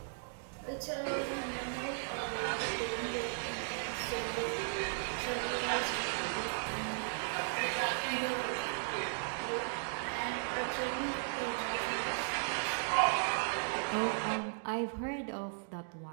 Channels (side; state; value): left; silent; digital silence